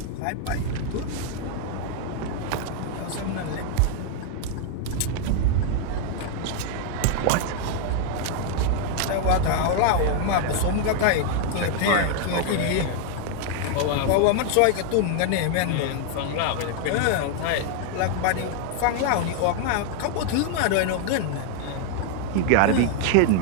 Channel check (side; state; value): both; different; correlation 0.00